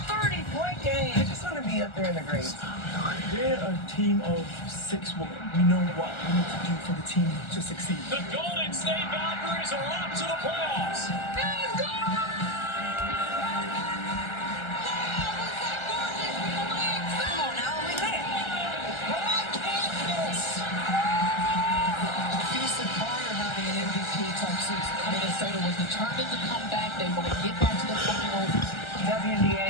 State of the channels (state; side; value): late; right; 1.3 ms